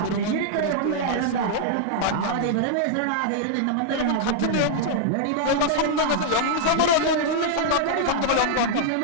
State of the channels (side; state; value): both; different; correlation -0.01